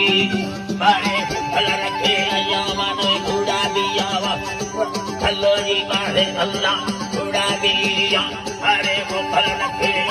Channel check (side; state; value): both; identical; correlation 1.00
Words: बारे फल रखे अयामन कूड़ा दिया खल्लो जी बारे अल्लाह कूड़ा दिया अरे वो फल रखे